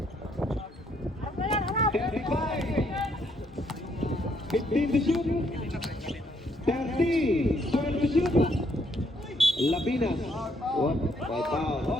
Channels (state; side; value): normal; both; correlation 0.71